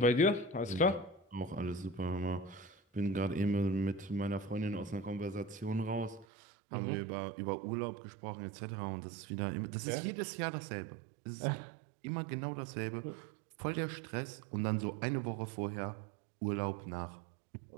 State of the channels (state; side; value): drops out; left; at 6.2 s